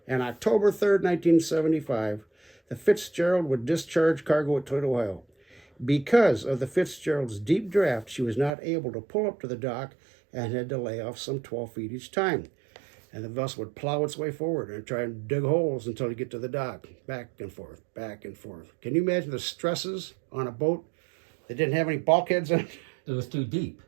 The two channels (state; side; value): drops out; left; at 8.5 s